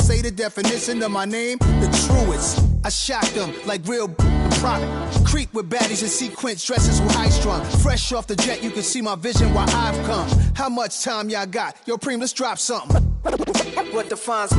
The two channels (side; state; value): both; identical; correlation 1.00